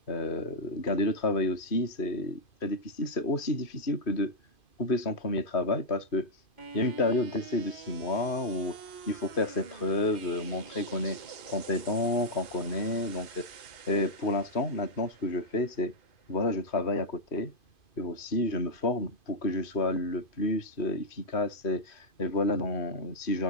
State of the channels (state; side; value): late; right; 2.5 ms